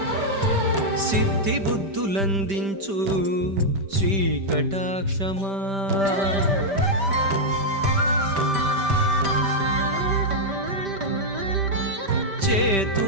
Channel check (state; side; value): late; left; 5.1 ms